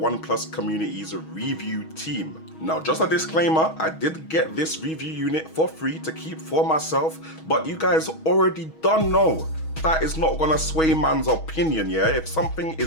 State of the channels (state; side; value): late; right; 6.3 ms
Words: Community's review team. Now just a disclaimer, I did get this review unit for free to keep for myself, but you guys already don't know. That is not gonna sway man's opinion, yeah? If something